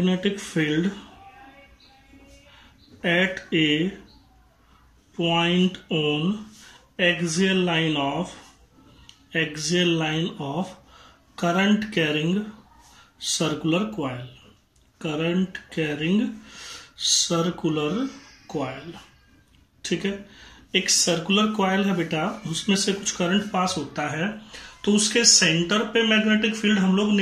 field at A point on axial line of current carrying circular coil. ठीक है, एक सर्कुलर कॉइल है बेटा, उसमें से कुछ करंट पास होता है, तो उसके सेंटर पे मैग्नेटिक फील्ड हम लोग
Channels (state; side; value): identical; both; correlation 1.00